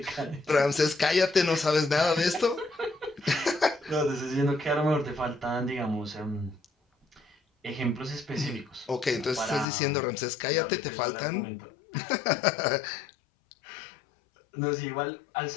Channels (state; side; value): drops out; right; at 9.7 s